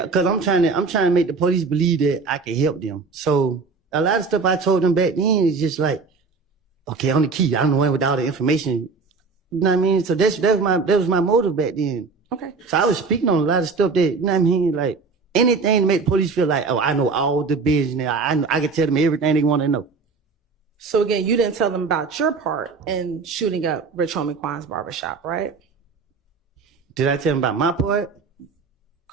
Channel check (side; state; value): left; quieter; 4.6 dB